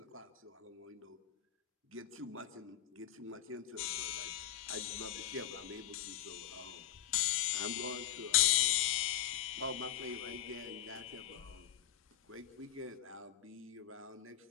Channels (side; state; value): right; quieter; 11.1 dB